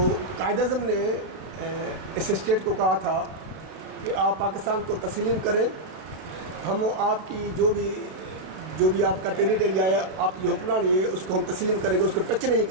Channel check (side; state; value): left; late; 32 ms